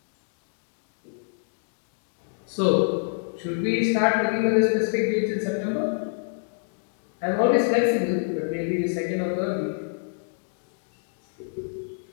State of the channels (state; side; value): silent; right; digital silence